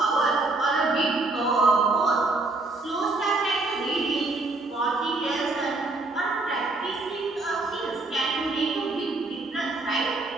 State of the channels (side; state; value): left; quieter; 3.2 dB